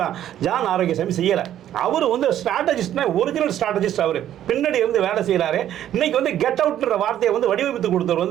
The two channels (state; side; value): quieter; left; 11.4 dB